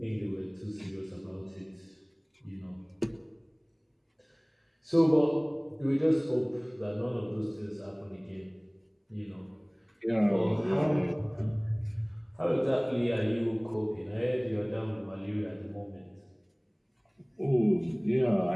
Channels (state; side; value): identical; both; correlation 1.00